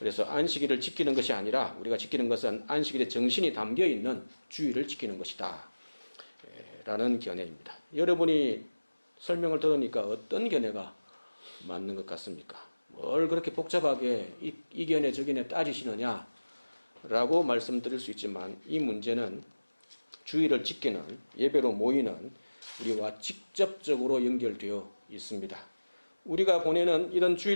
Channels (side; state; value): both; inverted; correlation -1.00